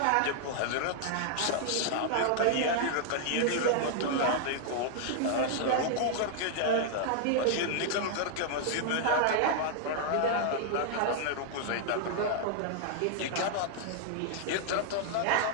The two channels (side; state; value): both; different; correlation 0.00